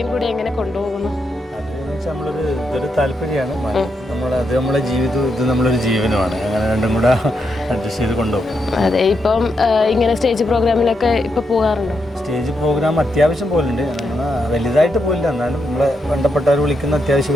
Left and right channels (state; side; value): normal; both; correlation 0.82